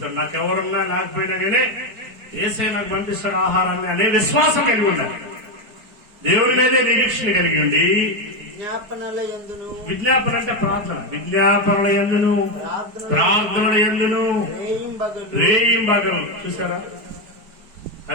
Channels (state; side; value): late; left; 4.6 ms